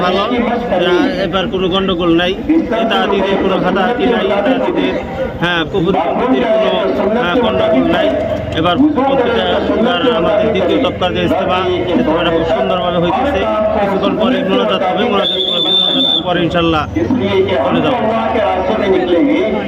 ভালো। এবার কোনো গন্ডগোল নাই, নেতাহাতিদের কোনো হাতাহাতি নাই, নেতাহাতিদের কুপুরপন্থীদের কোনো গন্ডগোল নাই। এবার আমাদের দ্বিতীয় তফকার যে ইজতেমাটা খুব সুন্দরভাবে হইতেছে। কিছুক্ষণ পরে মোনাজাত হবে, মোনাজাত পরে ইনশাল্লাহ চলে যাবো।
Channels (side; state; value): both; identical; correlation 1.00